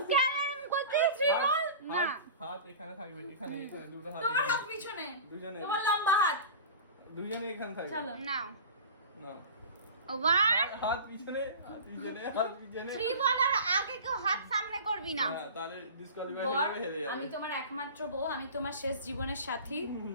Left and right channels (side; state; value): both; inverted; correlation -0.35